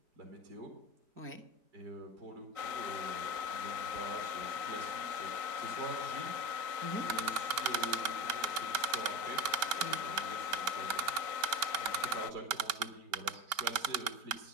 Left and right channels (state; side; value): late; left; 5.1 ms